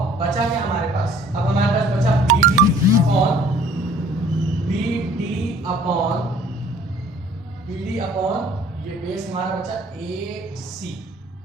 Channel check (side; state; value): both; normal; correlation 0.54